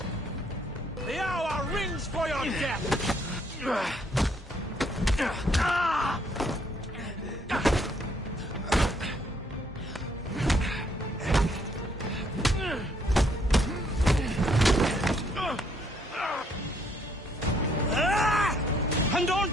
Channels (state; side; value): normal; both; correlation 0.68